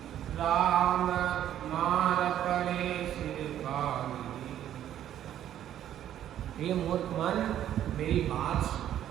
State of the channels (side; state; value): left; quieter; 11.2 dB